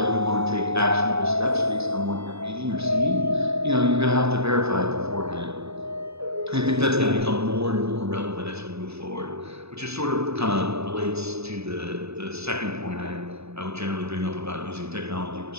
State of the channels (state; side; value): late; left; 0.79 ms